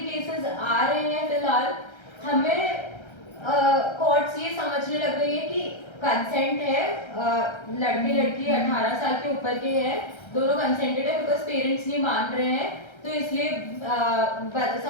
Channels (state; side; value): late; right; 1.3 ms